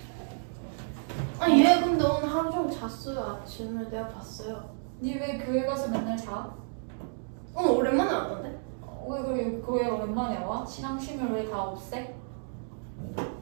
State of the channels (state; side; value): silent; left; digital silence